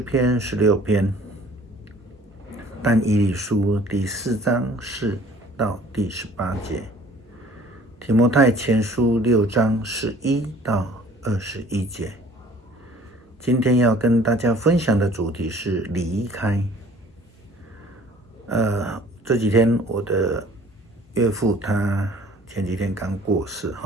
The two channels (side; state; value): both; normal; correlation 0.52